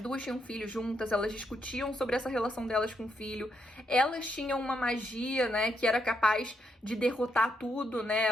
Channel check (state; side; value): normal; both; correlation 0.79